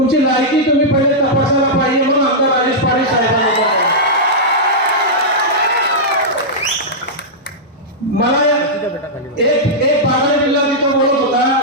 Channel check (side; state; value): both; normal; correlation -0.10